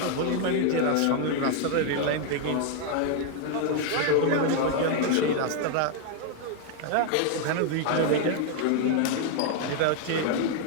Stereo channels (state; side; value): different; both; correlation 0.00